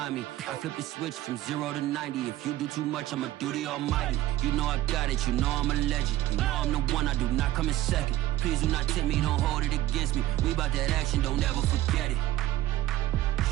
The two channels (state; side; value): quieter; left; 14.9 dB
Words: me. I flip the switch from 0 to 90. If you do too much, I'ma do the almighty. You know I got it, you know I'm a legend. You know I'm the one, I do not come in second. Please do not tempt me, don't hold it against me. We about that action, don't ever forget it.